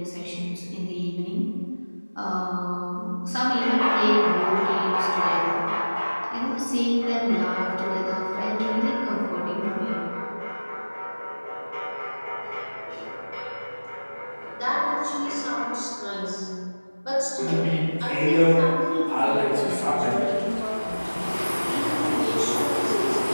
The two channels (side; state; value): both; inverted; correlation -1.00